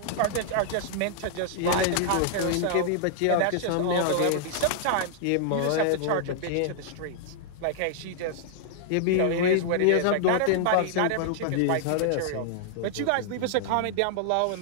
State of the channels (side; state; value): both; different; correlation -0.01